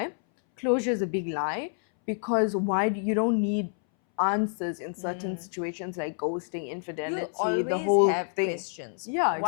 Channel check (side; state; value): right; silent; 59 dB below the other